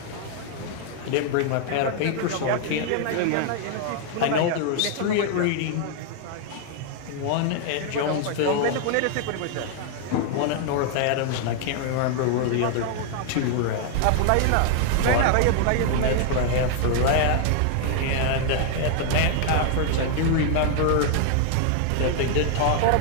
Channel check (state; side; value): different; both; correlation 0.00